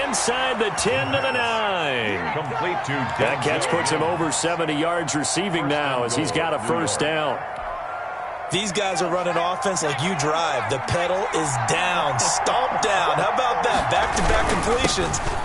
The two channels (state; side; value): identical; both; correlation 1.00